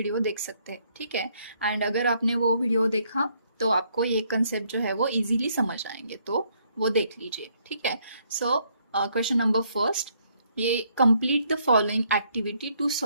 देख सकते हैं, ठीक है। एंड अगर आपने वो वीडियो देखा तो आपको ये कंसेप्ट जो है वो इजीली समझ आएंगे, तो वो देख लीजिए, ठीक है। सो क्वेश्चन नंबर फर्स्ट, ये complete the following activity to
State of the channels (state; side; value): inverted; both; correlation -0.70